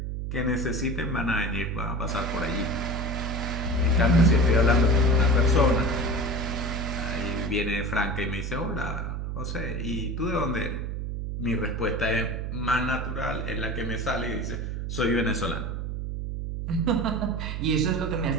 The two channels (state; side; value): noise; right; hum, 4 dB below the sound